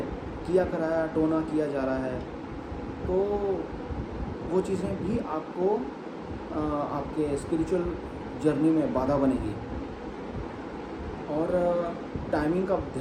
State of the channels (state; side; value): identical; both; correlation 1.00